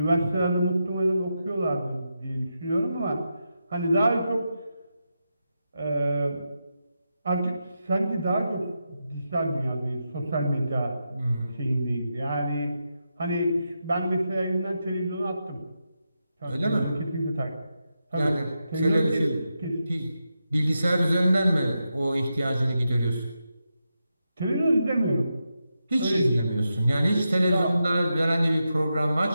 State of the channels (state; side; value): inverted; both; correlation -0.87